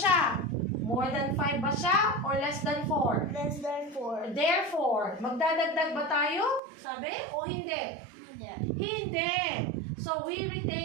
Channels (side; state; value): left; drops out; at 6.6 s